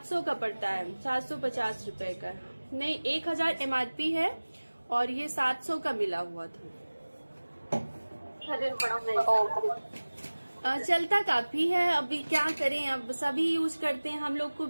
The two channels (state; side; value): inverted; both; correlation -1.00